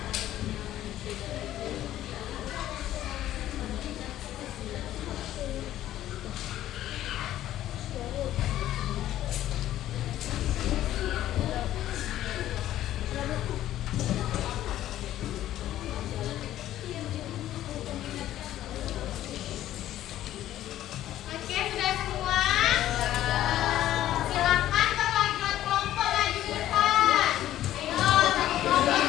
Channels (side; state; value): right; quieter; 13.1 dB